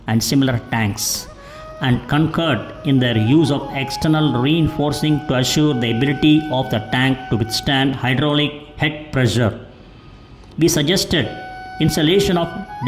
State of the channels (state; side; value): identical; both; correlation 1.00